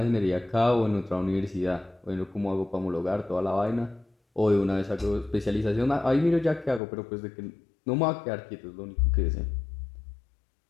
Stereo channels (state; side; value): drops out; right; at 6.8 s